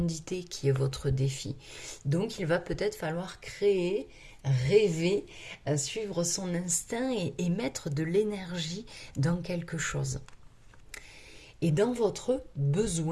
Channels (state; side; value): identical; both; correlation 1.00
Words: qui est votre défi. Donc il va peut-être falloir créer, rêver, suivre son instinct et mettre de l'énergie dans quelque chose. Et dans votre